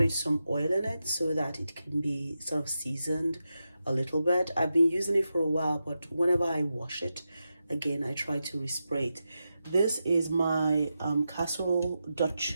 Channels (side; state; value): both; inverted; correlation -0.89